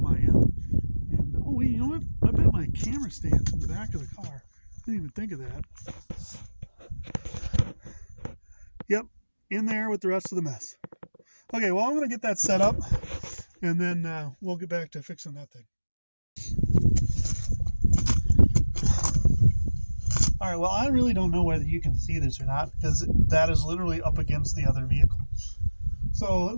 I am. And oh wait, you know what? I bet my camera stand's in the back of the car. I didn't even think of that. Yep, in there with the rest of the mess. Okay, well, I'm going to get that set up, and then we'll get back to fixing that thing. All right, well, I really don't know whether you can see this or not, because that is literally up against the other vehicle. So at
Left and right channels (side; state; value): both; inverted; correlation -1.00